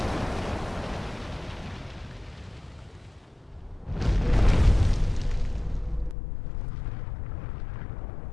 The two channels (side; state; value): right; drops out; at 6.2 s